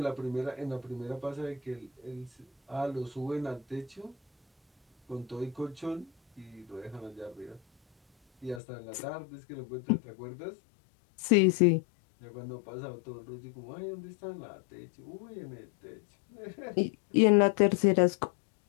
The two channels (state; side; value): drops out; right; at 8.6 s